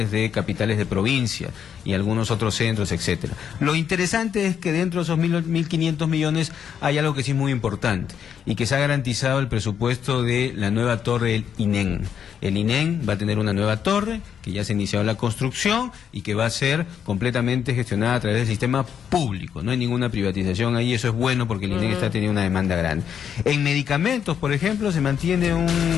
de capitales de provincia y algunos otros centros, etcétera. Lo interesante es que dentro de esos 1.500 millones hay algo que sí es muy importante y que se ha garantizado el presupuesto de la nueva torre del INEN. El INEN va a tener una nueva torre que ya se ha iniciado la construcción y que va a ser completamente gestionada a través del sistema público. No hay ninguna privatización ahí, eso es bueno porque el INEN está teniendo una demanda grande. En medicamentos, por ejemplo, se mantiene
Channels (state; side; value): quieter; right; 8.2 dB